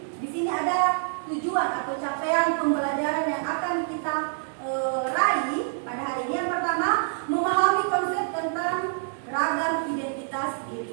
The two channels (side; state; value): left; silent; digital silence